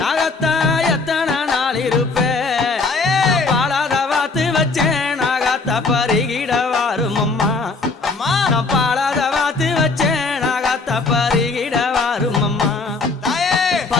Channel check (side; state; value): right; quieter; 3.9 dB